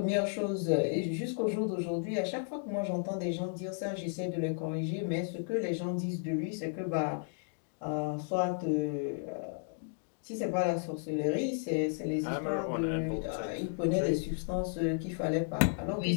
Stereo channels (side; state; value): right; silent; digital silence